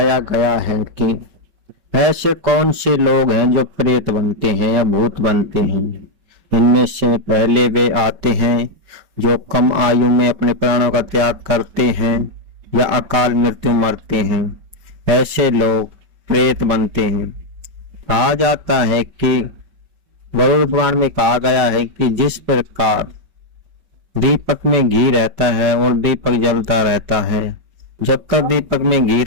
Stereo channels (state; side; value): late; left; 5.2 ms